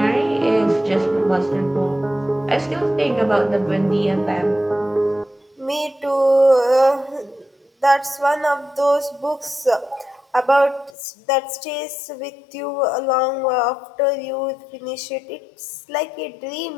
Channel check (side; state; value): right; drops out; at 10.9 s